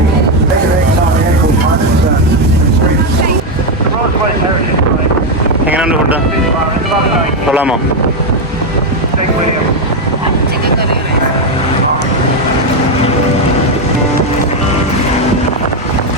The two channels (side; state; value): both; normal; correlation 0.05